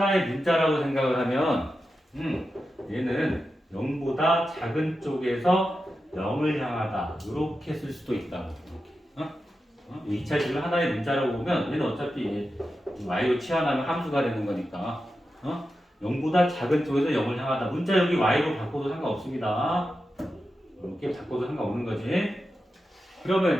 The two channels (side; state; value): both; normal; correlation 0.90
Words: 문자라고 생각을 하면 얘는 0보다 작은 쪽에서 0을 향하다. 이렇게 쓸 수도 있다고. 이렇게. 2차식을 하나의 문자라고 보면 얘는 어차피 y로 치환하면 함수가 되는 거니까 0보다 작은 쪽에서 0을 향하다. 문자 여기 y로 바꿔도 상관없습니다. 이렇게 바꿔도 상관없는 거지.